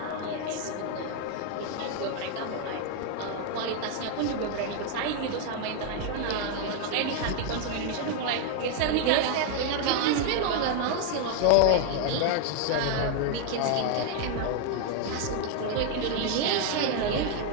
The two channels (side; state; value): both; different; correlation 0.00